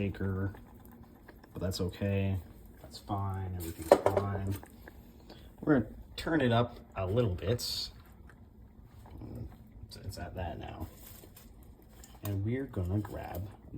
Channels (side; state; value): both; identical; correlation 1.00